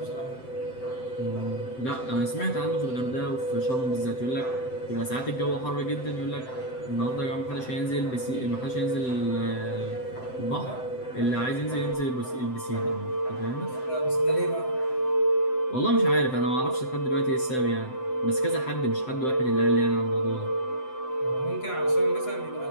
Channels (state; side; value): late; right; 7.8 ms